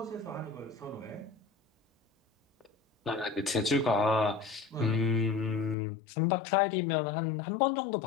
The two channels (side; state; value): right; drops out; at 5.8 s